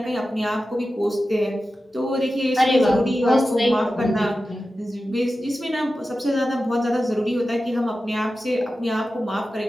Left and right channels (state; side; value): normal; both; correlation 0.93